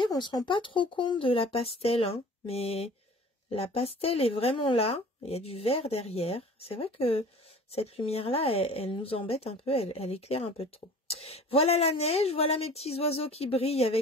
on ne se rend pas trop compte de la pastel, hein, mais la pastel est vraiment là. Il y a du vert derrière. C'est vrai que cette lumière-là, elle nous embête un peu, elle éclaire un peu trop. Voilà la neige, voilà mes petits oiseaux qui brillent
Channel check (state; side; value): normal; both; correlation 0.45